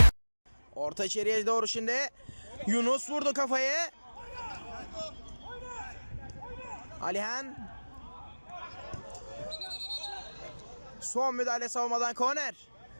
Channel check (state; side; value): inverted; both; correlation -1.00